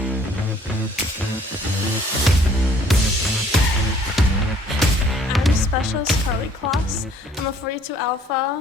Specialist Carley Kloss. I'm a 42 Alpha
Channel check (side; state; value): both; normal; correlation 0.58